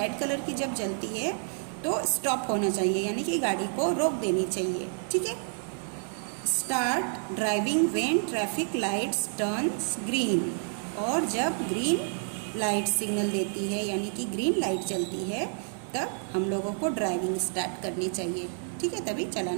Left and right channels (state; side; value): silent; left; 58 dB below the other